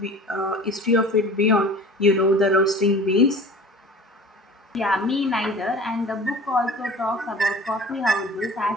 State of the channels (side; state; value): both; normal; correlation 0.41